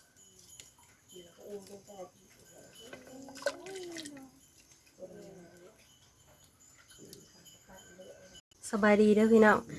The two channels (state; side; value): identical; both; correlation 1.00